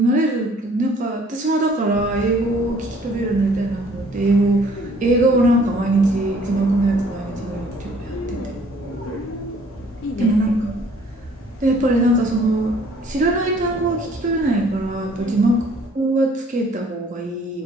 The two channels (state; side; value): normal; both; correlation 0.57